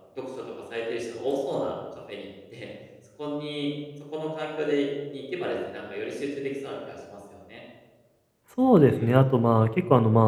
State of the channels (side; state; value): both; identical; correlation 1.00